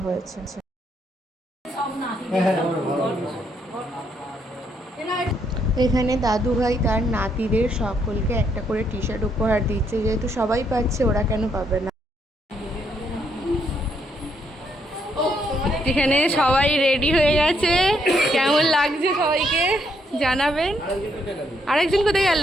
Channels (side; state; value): both; normal; correlation 0.74